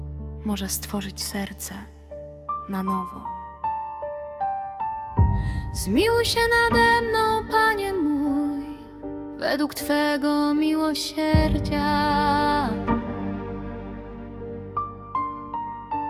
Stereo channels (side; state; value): both; identical; correlation 1.00